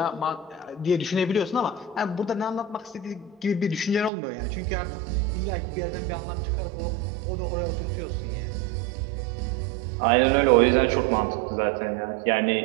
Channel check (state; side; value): drops out; left; at 4.1 s